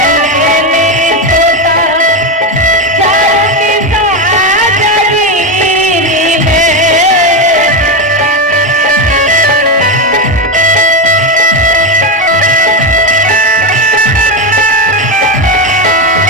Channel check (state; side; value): normal; both; correlation 0.12